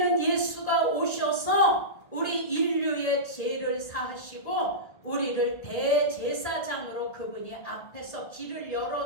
예수가 오셔서 우리 인류의 죄를 사하시고 우리를 대제사장으로 그분이 앞에서 길을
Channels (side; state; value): right; late; 1.3 ms